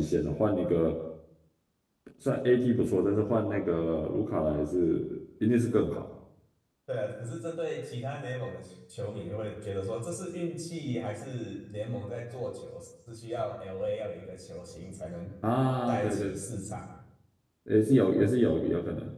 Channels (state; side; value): identical; both; correlation 1.00